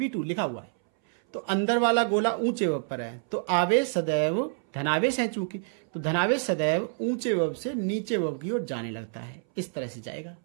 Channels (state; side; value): silent; left; 60 dB below the other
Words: लिखा हुआ है, तो अंदर वाला गोला ऊंचे विभव पर है। तो आवेश सदैव धनावेश है चूंकि, तो धनावेश सदैव ऊंचे विभव से नीचे विभव की ओर जाने लगता है, इस तरह से जाएगा।